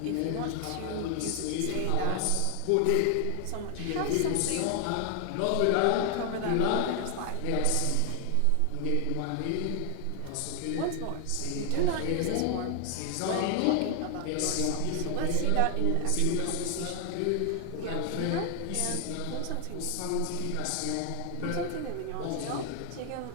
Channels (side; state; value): both; different; correlation 0.00